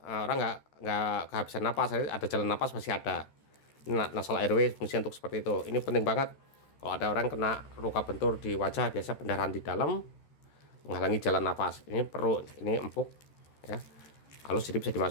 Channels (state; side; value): late; right; 13 ms